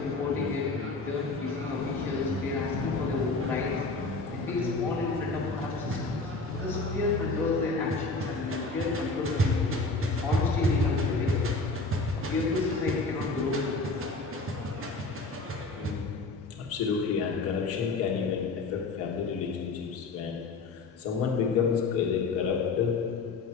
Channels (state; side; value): quieter; right; 3.7 dB